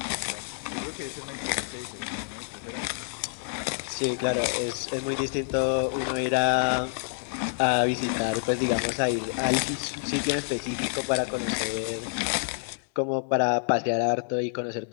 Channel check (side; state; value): right; silent; 59 dB below the other